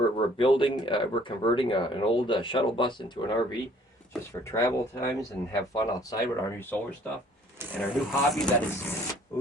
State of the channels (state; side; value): normal; both; correlation 0.57